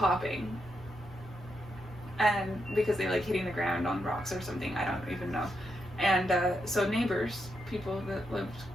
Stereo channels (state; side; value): normal; both; correlation 0.82